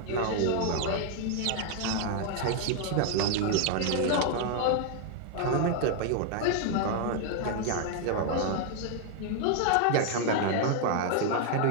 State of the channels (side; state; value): both; different; correlation 0.00